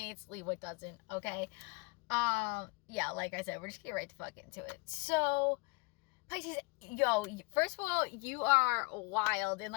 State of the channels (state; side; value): quieter; right; 29.3 dB